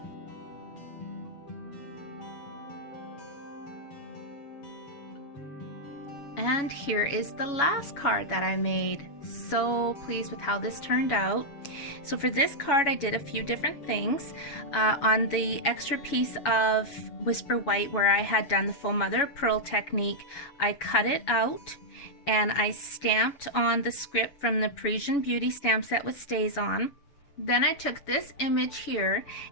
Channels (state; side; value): late; right; 7.1 ms